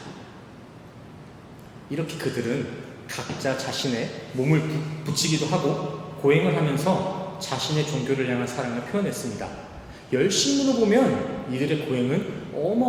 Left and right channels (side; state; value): both; identical; correlation 1.00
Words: 이렇게 그들은 각자 자신의 몸을 붙이기도 하고 고행을 하면서 자신의 종교를 향한 사랑을 표현했습니다. 열심으로 보면 이들의 고행은